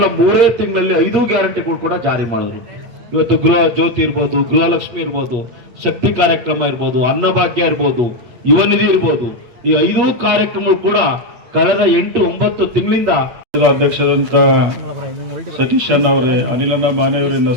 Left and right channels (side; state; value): left; late; 8.8 ms